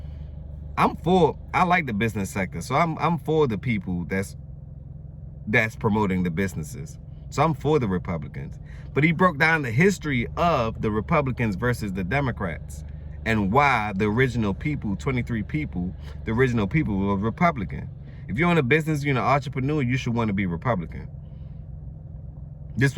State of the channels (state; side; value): identical; both; correlation 1.00